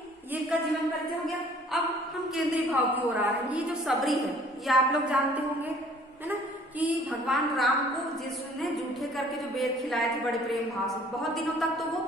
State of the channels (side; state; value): both; normal; correlation 0.55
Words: ये का जीवन परिचय हो गया। अब हम केंद्रीय भाव की ओर आ रहे हैं। ये जो सबरी है ये आप लोग जानते होंगे, है ना, कि भगवान राम को जिसने जूठे करके जो बेर खिलाए थे बड़े प्रेम भाव से, बहुत दिनों तक तो वो